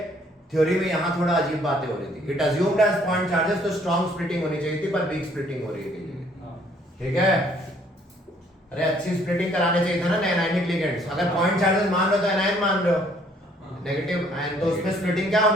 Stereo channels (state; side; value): normal; both; correlation 0.63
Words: थ्योरी में यहाँ थोड़ा अजीब बातें हो रही थी। It assumed as point charges, तो स्ट्रॉन्ग स्प्लिटिंग होनी चाहिए थी पर वीक स्प्लिटिंग हो रही है। ठीक है, अरे अच्छी स्प्लिटिंग कराने चाहिए था ना एनायनिक लिगेंड्स। अगर पॉइंट चार्जेस मान रहे हो तो एनायन मान रहे हो, नेगेटिव आयन, तो उसमें स्प्लिटिंग क्या